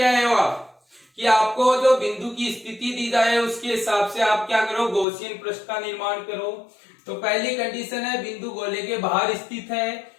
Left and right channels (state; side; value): drops out; right; at 5.1 s